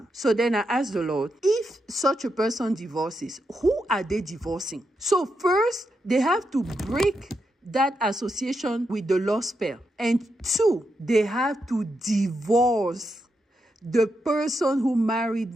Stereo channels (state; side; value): normal; both; correlation 0.84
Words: So then I asked the Lord, if such a person divorces, who are they divorcing? So first, they have to break that association with the love spell. And two, they have to divorce the person who married